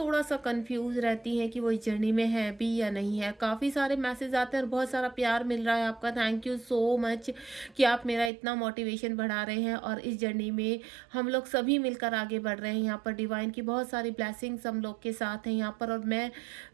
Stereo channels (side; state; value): left; drops out; at 8.3 s